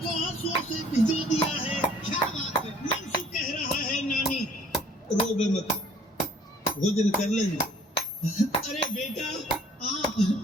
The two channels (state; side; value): normal; both; correlation 0.56